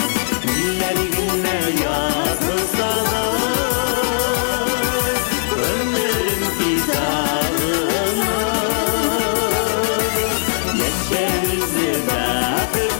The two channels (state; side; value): silent; right; 56 dB below the other